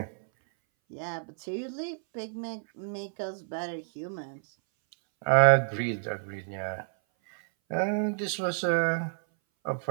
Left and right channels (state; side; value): silent; left; 58 dB below the other